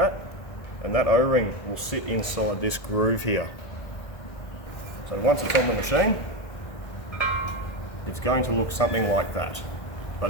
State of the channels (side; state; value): right; late; 1.7 ms